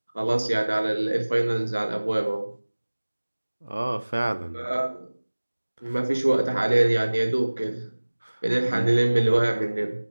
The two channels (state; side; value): inverted; both; correlation -1.00